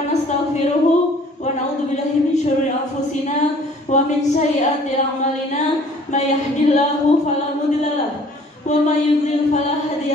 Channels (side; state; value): both; normal; correlation 0.54